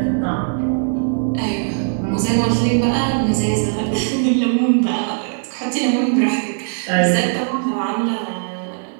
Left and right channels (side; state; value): left; silent; 66 dB below the other